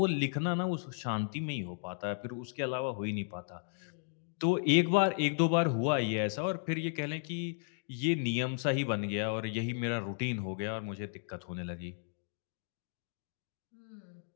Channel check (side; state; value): right; silent; digital silence